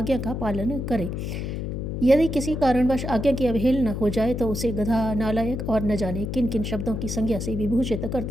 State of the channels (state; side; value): noise; left; hum, 4 dB below the sound